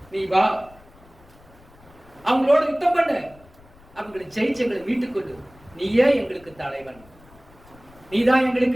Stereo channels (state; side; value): noise; left; rumble, 26 dB below the sound